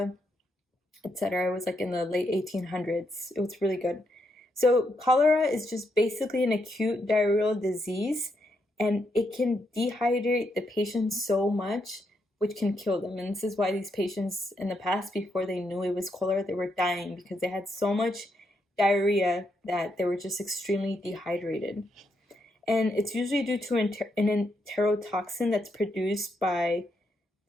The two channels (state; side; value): normal; both; correlation 0.79